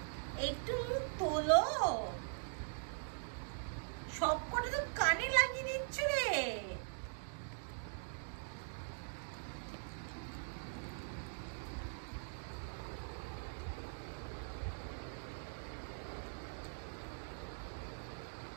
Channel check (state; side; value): silent; left; digital silence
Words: একটু মুখ তোলো, সব কটা তো কানে লাগিয়ে দিচ্ছ রে।